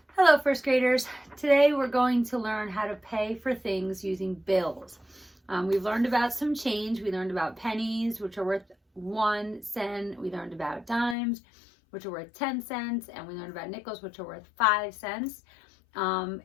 Hello, first graders. Today we're going to learn how to pay for things using bills. We've learned about some change. We learned about pennies, which are worth 1 cent. We learned about dimes, which are worth 10 cents. And we learned about nickels, which are worth 5 cents.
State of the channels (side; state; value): right; drops out; at 11.2 s